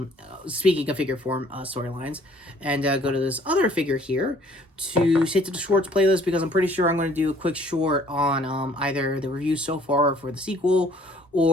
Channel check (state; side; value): normal; both; correlation 0.58